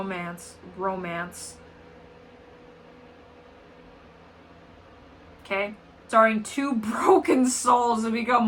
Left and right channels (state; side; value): identical; both; correlation 1.00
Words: Okay? Starring 2 broken souls to become